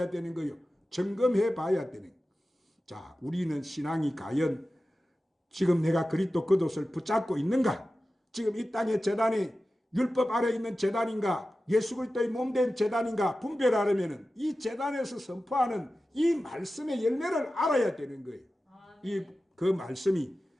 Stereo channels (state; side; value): normal; both; correlation 0.94